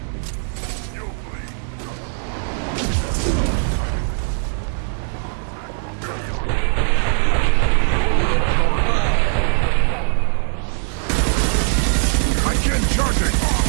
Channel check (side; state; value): left; silent; digital silence